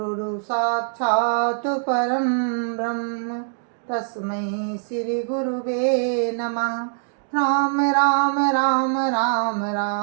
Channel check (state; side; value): silent; left; digital silence